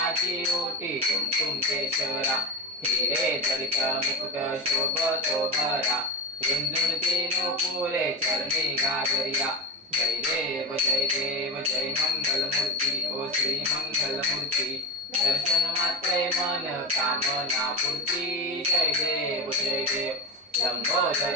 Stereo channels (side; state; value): both; normal; correlation 0.19